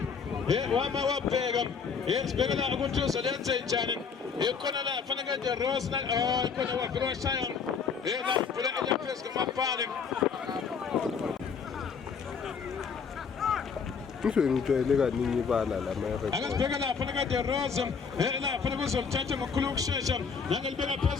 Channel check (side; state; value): right; quieter; 5.9 dB